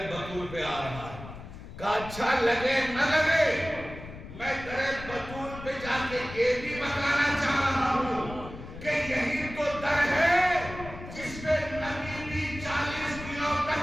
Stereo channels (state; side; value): noise; left; rumble, 13 dB below the sound